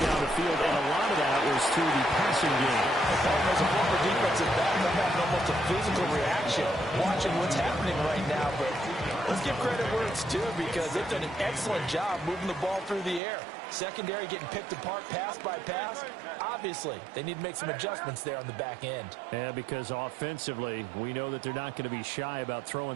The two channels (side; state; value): left; drops out; at 13.2 s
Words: the field, and a lot of that was through the passing game. As a former defensive back, I'm having almost a physical reaction watching what's happening right now. But let's give credit where it's due, because they've done an excellent job moving the ball through the air. Secondary getting picked apart pass by pass. Obviously, they need to make some adjustments there on the back end. Yeah, because offensively, we know that they're not going to be shy about throwing